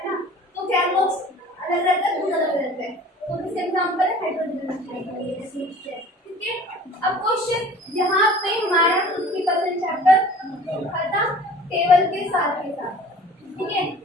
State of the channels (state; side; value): normal; both; correlation 0.46